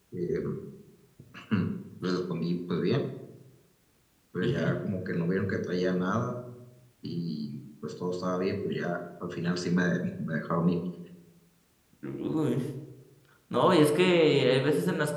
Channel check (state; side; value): identical; both; correlation 1.00